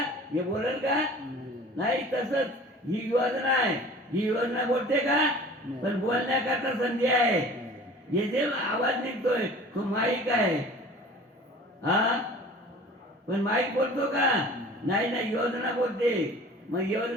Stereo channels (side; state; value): both; normal; correlation 0.44